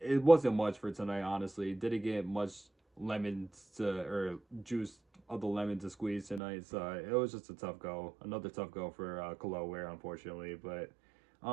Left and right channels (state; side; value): drops out; left; at 6.4 s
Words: wasn't much for tonight, honestly. Didn't get much lemons to, or juice of the lemon to squeeze tonight, so it was just a tough go. Another tough go for Khalil Ware, unfortunately, but